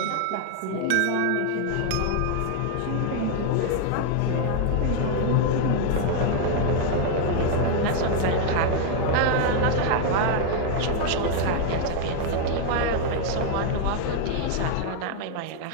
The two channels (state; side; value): different; both; correlation 0.00